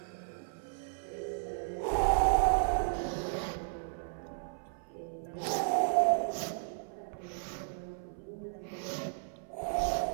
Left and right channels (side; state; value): left; silent; 55 dB below the other